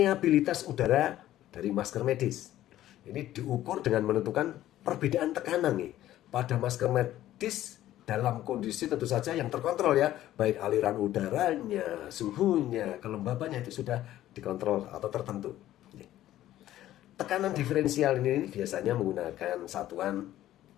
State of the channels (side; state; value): right; quieter; 13.6 dB